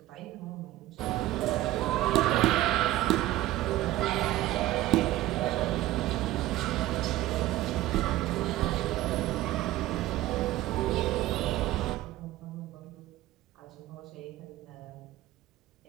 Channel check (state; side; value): quieter; left; 15.8 dB